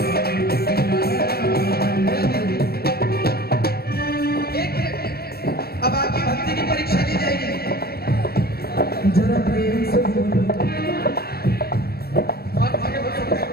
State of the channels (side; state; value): right; late; 0.45 ms